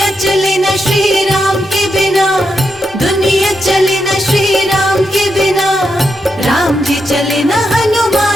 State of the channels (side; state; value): both; normal; correlation 0.84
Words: चले न श्री राम के बिना, दुनिया चले न श्री राम के बिना, राम जी चले न